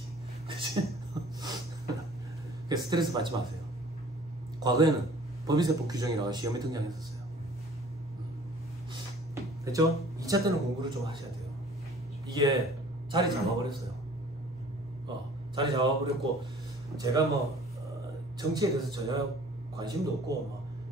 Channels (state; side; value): normal; both; correlation 0.50